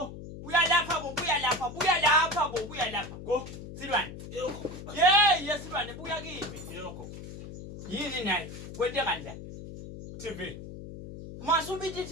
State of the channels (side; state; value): left; noise; hum, 12 dB below the sound